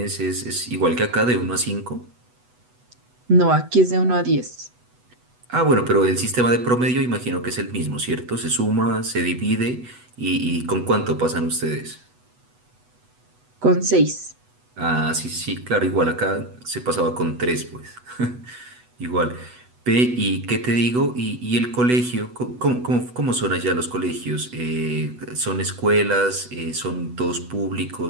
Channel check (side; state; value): left; late; 8.1 ms